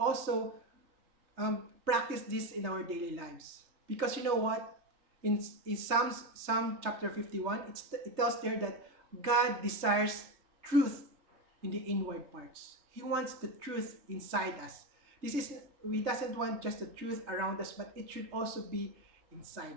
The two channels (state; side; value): late; left; 3.3 ms